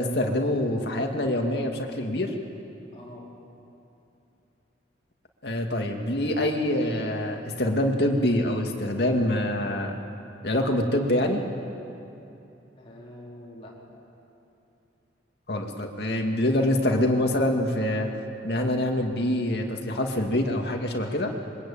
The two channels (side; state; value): both; normal; correlation 0.44